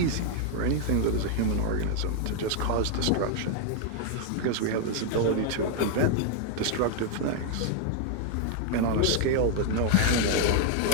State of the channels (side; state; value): both; different; correlation 0.00